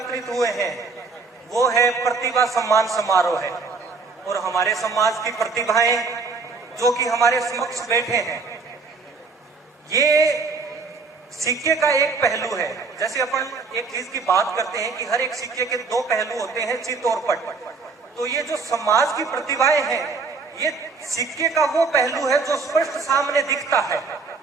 हुए हैं वो है प्रतिभा सम्मान समारोह है। और हमारे समाज की प्रतिभाएं जो कि हमारे समक्ष बैठे हैं, ये सिक्के का एक पहलू है। जैसे अपन एक चीज की बात करते हैं कि हर एक सिक्के के दो पहलू होते हैं, चित और पट। तो ये जो समाज की प्रतिभाएं हैं, ये सिक्के का वो पहलू है जो स्पष्ट सामने दिखता है।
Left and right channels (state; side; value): quieter; left; 4.5 dB